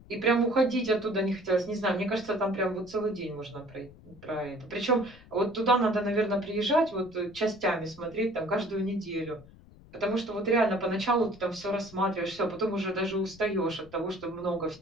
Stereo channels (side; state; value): left; noise; rumble, 22 dB below the sound